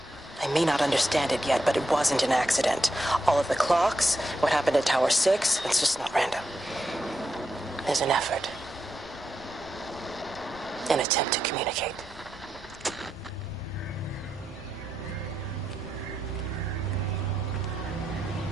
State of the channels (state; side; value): normal; both; correlation 0.84